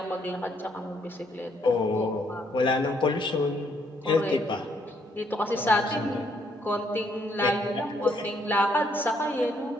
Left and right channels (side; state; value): both; normal; correlation 0.70